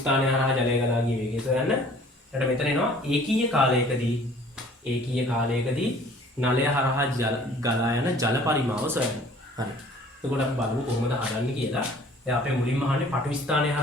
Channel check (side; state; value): both; normal; correlation 0.52